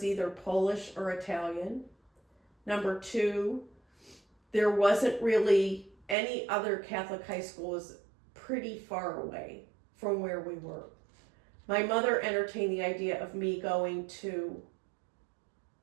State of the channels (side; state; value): left; drops out; at 6.2 s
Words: either Polish or Italian. Number 2, there wasn't really any other Catholic high school. Was pretty far away from where we were. My mother entertained the idea of me going to